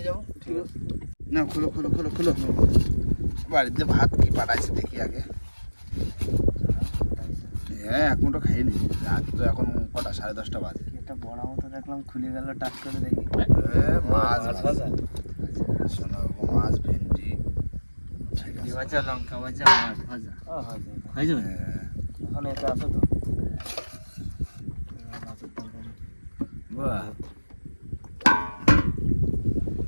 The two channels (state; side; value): inverted; both; correlation -1.00